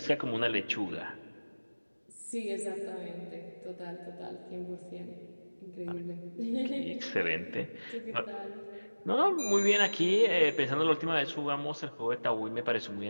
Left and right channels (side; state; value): both; inverted; correlation -1.00